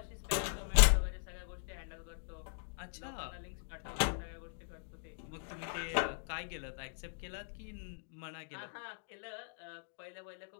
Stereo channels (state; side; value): silent; right; digital silence